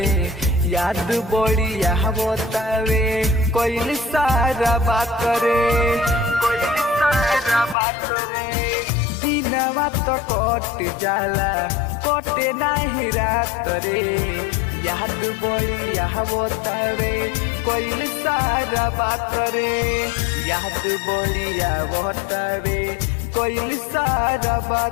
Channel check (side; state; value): right; drops out; at 7.8 s